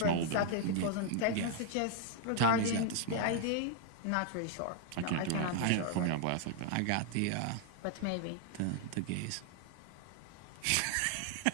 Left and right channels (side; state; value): both; different; correlation 0.00